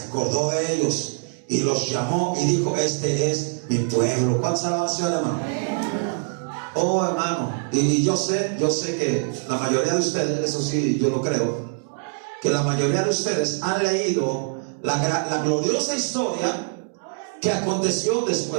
acordó de ellos y los llamó y dijo: este es mi pueblo. ¿Cuántas alabanzas, hermano? Oh, hermano, y yo sé que la mayoría de ustedes, eso sí, yo lo creo, que la mayoría de ustedes han leído la gloriosa historia que aconteció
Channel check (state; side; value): silent; left; 63 dB below the other